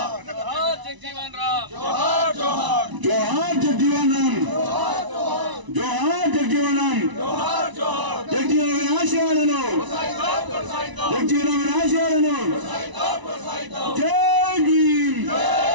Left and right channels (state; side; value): late; left; 1.0 ms